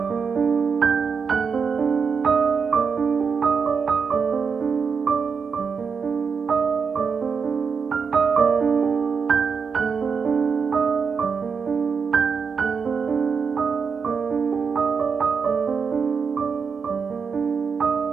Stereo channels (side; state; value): left; quieter; 5.8 dB